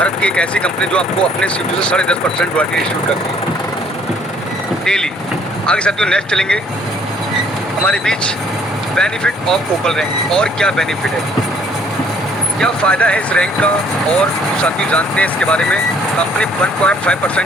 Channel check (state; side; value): normal; both; correlation 0.61